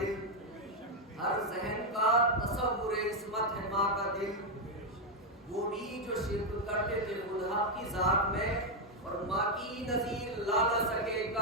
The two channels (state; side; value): normal; both; correlation 0.02